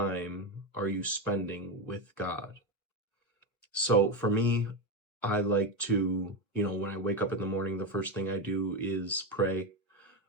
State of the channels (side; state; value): both; normal; correlation 0.13